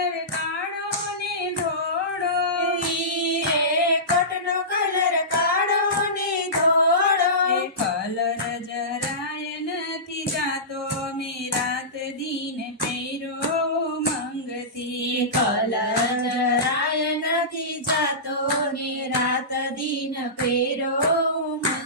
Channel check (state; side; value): normal; both; correlation -0.19